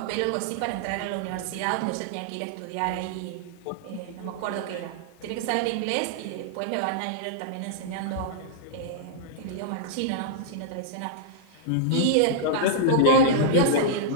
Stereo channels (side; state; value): both; different; correlation -0.01